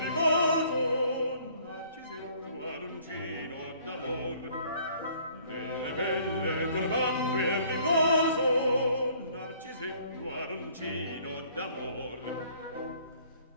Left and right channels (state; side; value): inverted; both; correlation -0.58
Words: riposo, narcisetto arancino d'amor, delle belle trovando il riposo, narcisetto arancino d'amor.